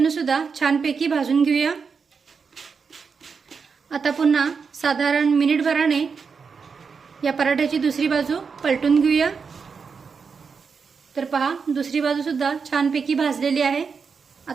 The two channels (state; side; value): quieter; left; 5.6 dB